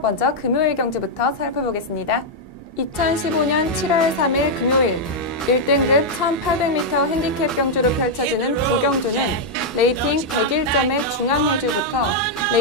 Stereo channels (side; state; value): both; normal; correlation -0.03